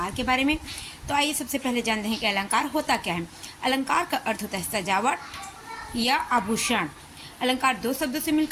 के बारे में। तो आइए सबसे पहले जानते हैं कि अलंकार होता क्या है। अलंकार का अर्थ होता है सजावट या आभूषण। अलंकार दो शब्दों से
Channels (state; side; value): identical; both; correlation 1.00